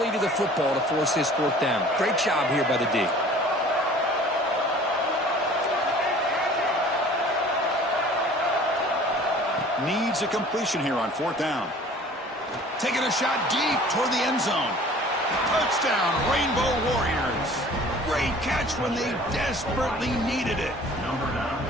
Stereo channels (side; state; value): both; normal; correlation 0.48